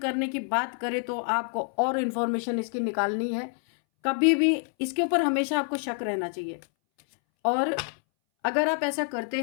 की बात करें तो आपको और इन्फॉर्मेशन इसकी निकालनी है। कभी भी इसके ऊपर हमेशा आपको शक रहना चाहिए। और अगर आप ऐसा करते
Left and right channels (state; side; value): silent; right; 60 dB below the other